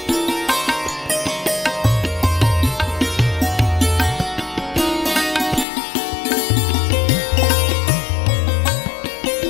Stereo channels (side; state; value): right; drops out; at 5.7 s